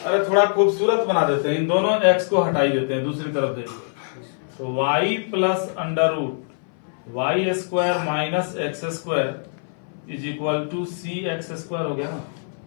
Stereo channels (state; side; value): silent; right; 60 dB below the other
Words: थोड़ा खूबसूरत बना देते हैं, इन दोनों x को हटाई देते हैं, दूसरी तरफ देखिए। तो y plus under root y square minus x square is equal to C x square हो गया ना।